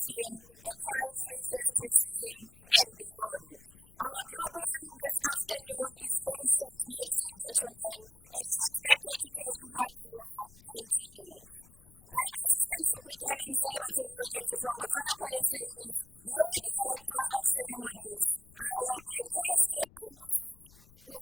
A Crime-Free Festive Season and Beyond. Our program this afternoon is very short, ladies and gentlemen, and is expected to take 1 hour, 20 minutes. I'm Assistant Superintendent Selebatso Moeketsi from Botswana Police Service, your Director of Ceremonies. I will be co-steering this ship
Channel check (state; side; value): noise; left; rumble, 24 dB below the sound